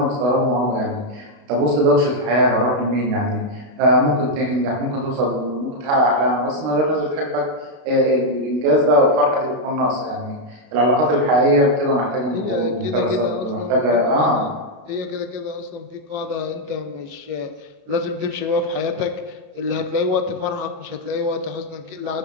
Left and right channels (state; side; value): late; left; 32 ms